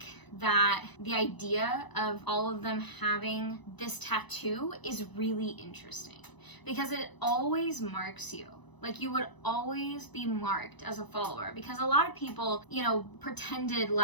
that the idea of all of them having this tattoo is really interesting, because it always marks you Like, you would always be marked as a follower, because a lot of people, you know, pretended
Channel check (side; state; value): right; late; 1.0 ms